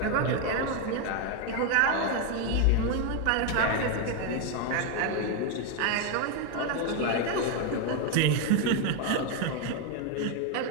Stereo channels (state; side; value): different; both; correlation 0.01